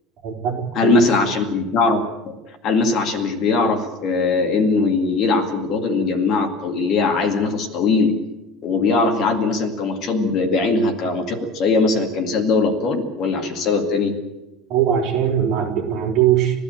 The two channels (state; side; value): normal; both; correlation 0.34